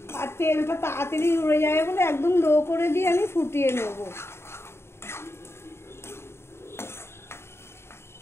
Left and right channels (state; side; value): late; right; 0.12 ms